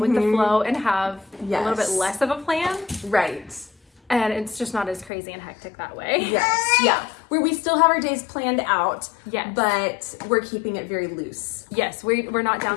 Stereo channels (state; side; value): drops out; right; at 5.1 s